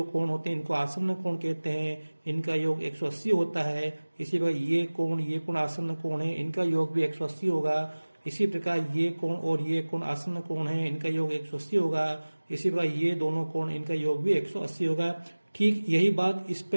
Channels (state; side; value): inverted; both; correlation -1.00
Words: कोण होते हैं इनको आसन्न कोण कहते हैं। इनका योग 180 होता है। इसी प्रकार ये कोण आसन्न कोण है, इनका योग भी 180 होगा। इसी प्रकार ये कोण और ये कोण आसन्न कोण है, इनका योग 180 होगा। इसी प्रकार ये दोनों कोण, इनका योग भी 180 होगा। ठीक यही बात इस